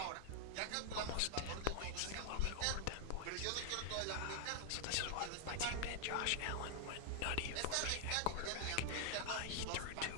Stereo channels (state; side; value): different; both; correlation 0.00